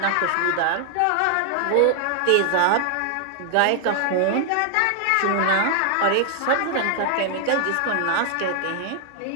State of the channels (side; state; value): both; different; correlation 0.00